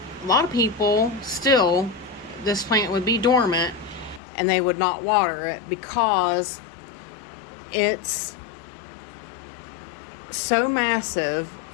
a lot of people still, this plant would be dormant and they would not water it because it's so massive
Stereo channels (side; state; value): right; drops out; at 4.2 s